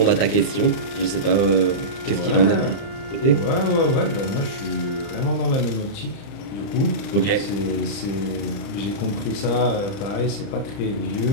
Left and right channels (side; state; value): right; late; 30 ms